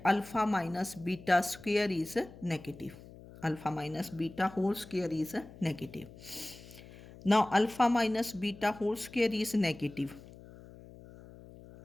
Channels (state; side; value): noise; left; hum, 19 dB below the sound